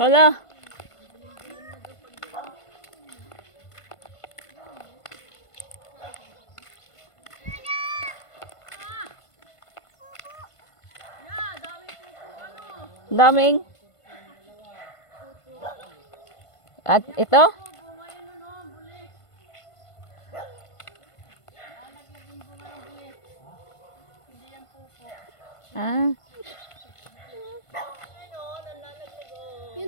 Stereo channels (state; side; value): late; right; 1.5 ms